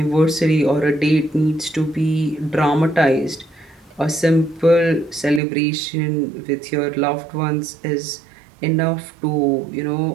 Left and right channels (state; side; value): drops out; left; at 5.4 s